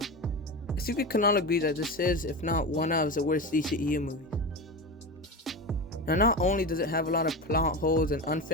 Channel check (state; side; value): normal; both; correlation 0.23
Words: I think we can all agree that this is, if not one of, the worst DCEU movies. Now not only does it have a lot of plot holes and